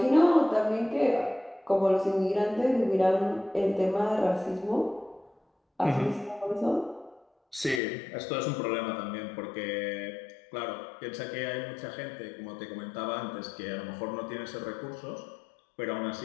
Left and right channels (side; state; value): right; drops out; at 7.8 s